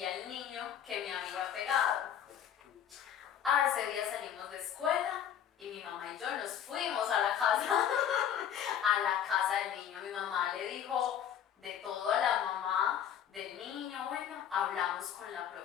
el niño que me había pegado. Ese día salimos de escuela y mi mamá y yo nos fuimos a la casa, a la casa del niño. Mi mamá le dijo de todo a la mamá del niño. Bueno, hablamos con la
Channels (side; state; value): right; quieter; 9.4 dB